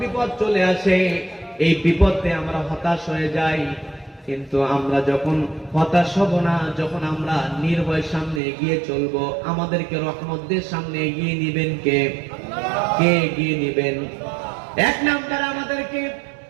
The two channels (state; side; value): drops out; left; at 8.4 s